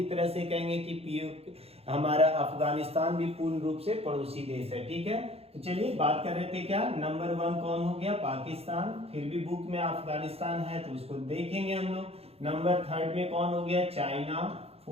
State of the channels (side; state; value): left; late; 0.29 ms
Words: तरह से कहेंगे कि पीओके हमारा अफगानिस्तान भी पूर्ण रूप से पड़ोसी देश है, ठीक है। तो चलिए बात कर रहे थे क्या, नंबर 1 कौन हो गया, पाकिस्तान। फिर भी बुक में अफगानिस्तान है तो उसको देखेंगे हम लोग। नंबर 3 में कौन हो गया, चाइना।